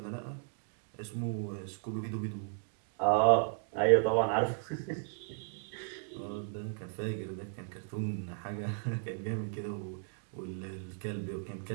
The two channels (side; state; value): left; silent; digital silence